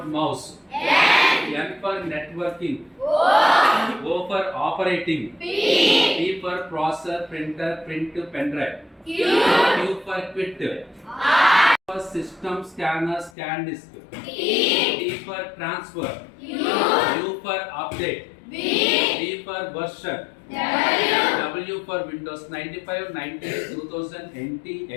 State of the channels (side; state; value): right; drops out; at 13.3 s